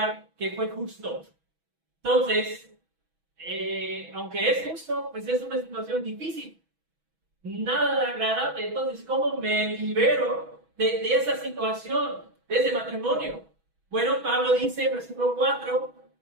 que fue justo. Entonces, aunque es justo, pues es una situación difícil, nada agradable. Entonces, ¿cómo me libero de esa situación, de ese matrimonio? Bueno, Pablo dice, versículo 4,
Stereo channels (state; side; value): late; left; 6.1 ms